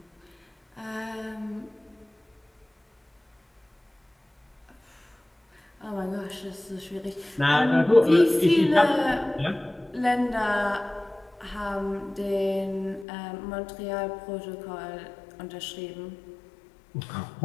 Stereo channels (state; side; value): drops out; right; at 13.1 s